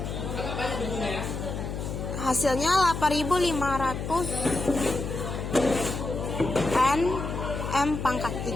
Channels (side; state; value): left; noise; hum, 5 dB below the sound